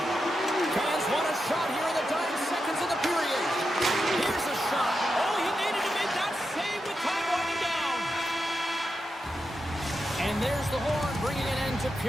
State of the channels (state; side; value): normal; both; correlation 0.88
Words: Fans want a shot here in the dying seconds of the period. Here's a shot. Oh, he needed to make that save with time winding down. And there's the horn, bringing an end to